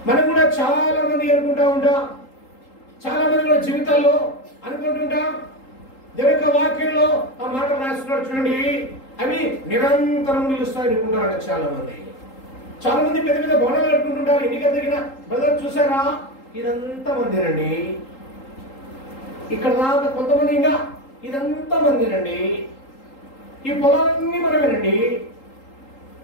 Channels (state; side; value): late; right; 3.8 ms